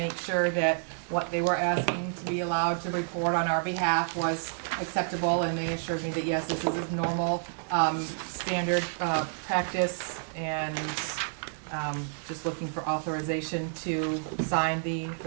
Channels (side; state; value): left; silent; 58 dB below the other